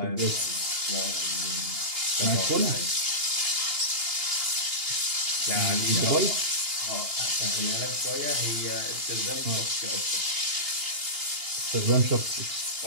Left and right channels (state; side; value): late; left; 2.8 ms